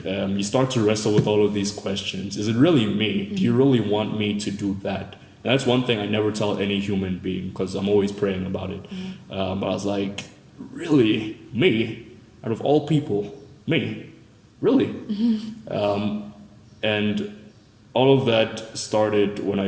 you start to wrestle with all of these questions. Is it really me? Do you really want me to do that? And that's one thing I never tell any human being, because I'm always praying about it. But I was like, really? Me? Out of all people? Me? Really? And all of that started when I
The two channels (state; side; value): identical; both; correlation 1.00